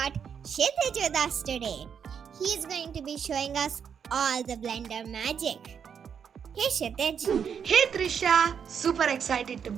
Kshithij with us today. He's going to be showing us all the Blender magic. Hey Kshithij. Hey Trisha, super excited to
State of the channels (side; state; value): left; quieter; 7.3 dB